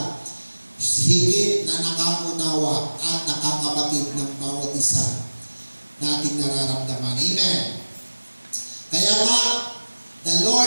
higit na nakaunawa at nakakabatid ng bawat isa nating nararamdaman. Amen? Kaya nga, the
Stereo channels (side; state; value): both; inverted; correlation -1.00